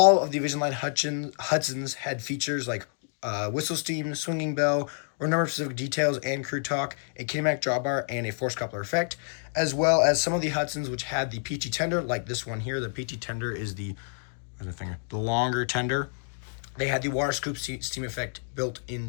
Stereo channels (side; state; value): right; silent; 59 dB below the other